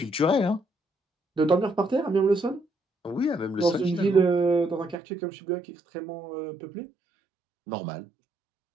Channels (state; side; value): drops out; left; at 5.0 s